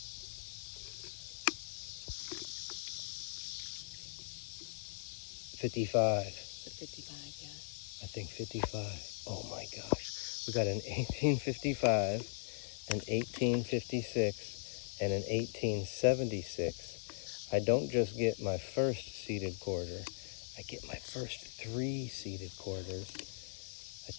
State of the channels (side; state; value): right; silent; digital silence